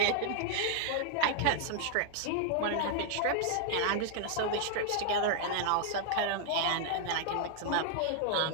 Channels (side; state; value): both; different; correlation 0.00